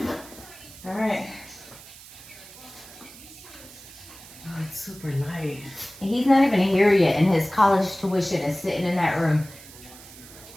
All right. Oh, it's super light. He's not even here yet, and his college tuition is sitting in that room.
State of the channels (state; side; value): noise; right; hiss, 18 dB below the sound